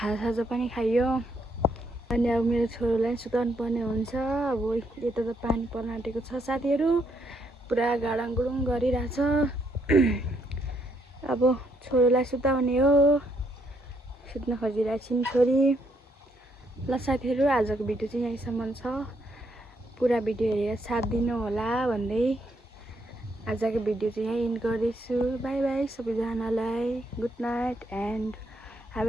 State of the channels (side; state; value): both; normal; correlation 0.74